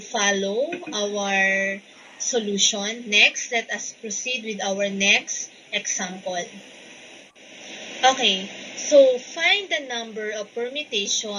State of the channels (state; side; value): identical; both; correlation 1.00